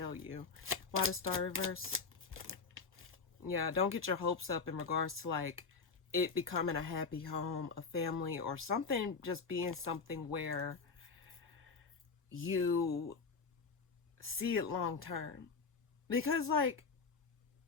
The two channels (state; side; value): quieter; right; 4.9 dB